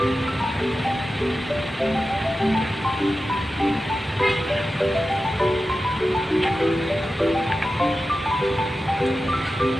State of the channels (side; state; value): both; normal; correlation 0.93